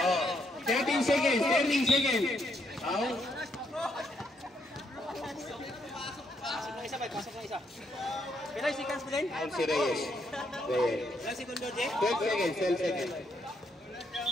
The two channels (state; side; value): normal; both; correlation 0.75